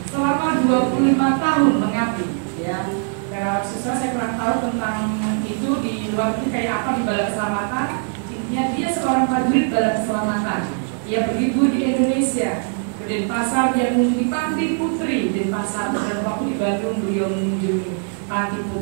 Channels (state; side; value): silent; left; 56 dB below the other